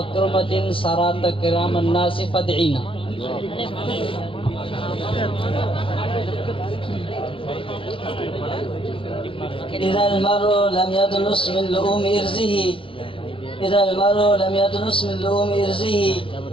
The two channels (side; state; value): right; late; 0.25 ms